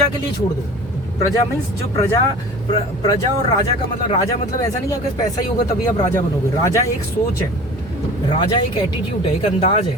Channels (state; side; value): normal; both; correlation 0.40